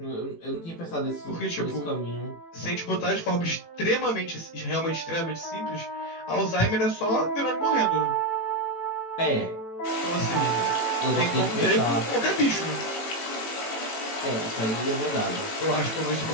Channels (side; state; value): right; late; 18 ms